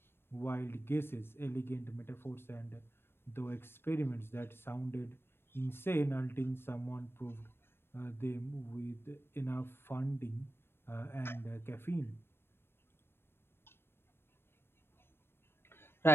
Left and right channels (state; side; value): late; right; 0.11 ms